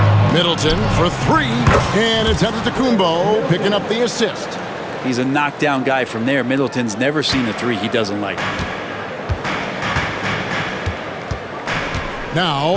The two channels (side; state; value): both; identical; correlation 1.00